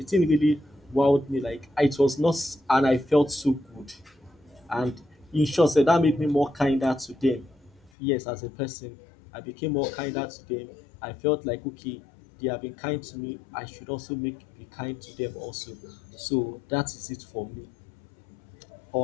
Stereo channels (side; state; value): right; drops out; at 7.9 s